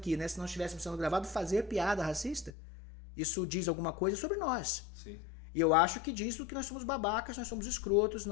né? Se não estivéssemos sendo gravados, fazer piada racista. Isso diz alguma coisa sobre nós. Sim. E eu acho que diz que nós somos babacas, nós somos escrotos,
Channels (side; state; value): right; drops out; at 2.5 s